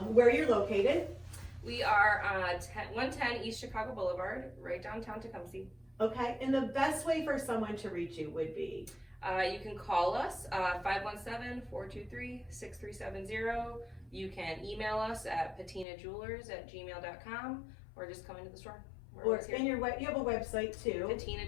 where you're located. We are 110 East Chicago Boulevard, right downtown Tecumseh. Okay. And the best way for someone to reach you would be? You can call us 517-423-6370. You can email us at patinajewelers@gmail.com, or just come into the store. Or and you have a website too.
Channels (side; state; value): right; drops out; at 15.9 s